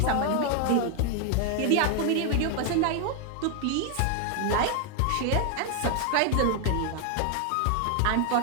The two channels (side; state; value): both; different; correlation 0.00